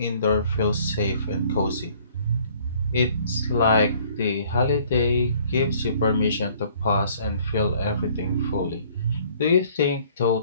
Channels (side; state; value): both; inverted; correlation -0.58